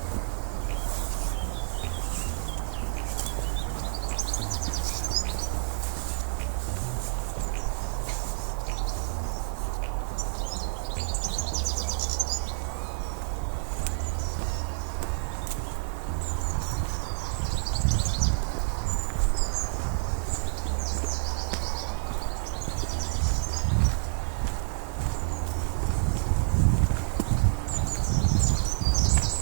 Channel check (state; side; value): silent; left; digital silence